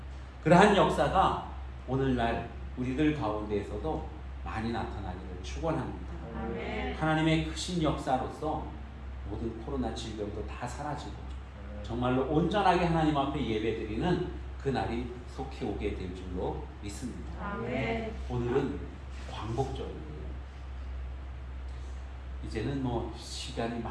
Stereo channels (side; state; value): both; identical; correlation 1.00